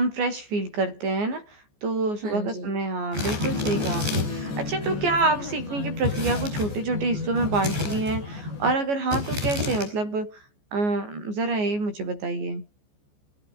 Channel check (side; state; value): left; late; 14 ms